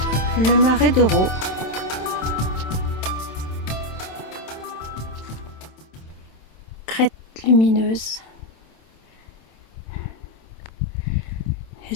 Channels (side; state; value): right; late; 27 ms